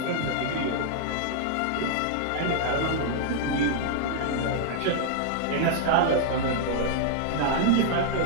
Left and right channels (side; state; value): both; different; correlation -0.01